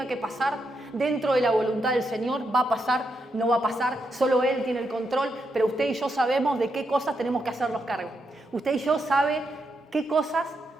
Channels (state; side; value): normal; both; correlation 0.82